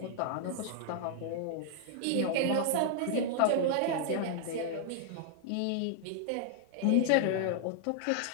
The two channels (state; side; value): different; both; correlation 0.00